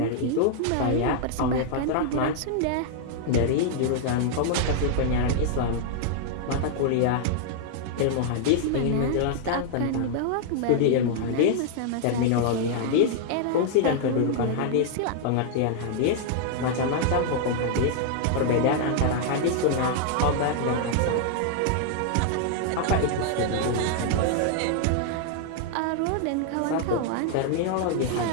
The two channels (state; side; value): different; both; correlation -0.01